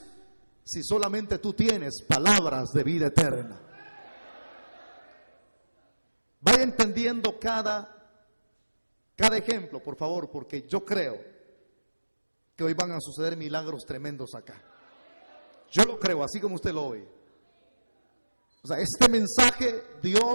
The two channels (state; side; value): inverted; both; correlation -1.00